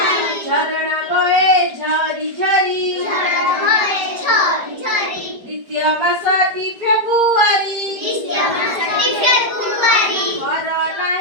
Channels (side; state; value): left; late; 4.8 ms